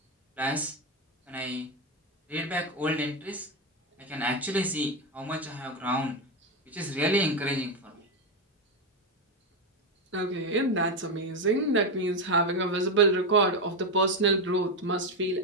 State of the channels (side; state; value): both; normal; correlation 0.09